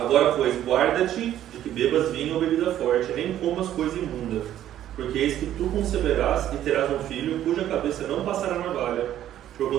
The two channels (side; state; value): left; quieter; 11.8 dB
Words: pois, guarda-te de que bebas vinho ou bebida forte, nem comas coisa imunda, porque eis que tu conceberás e terás um filho, cuja cabeça não passará navalha,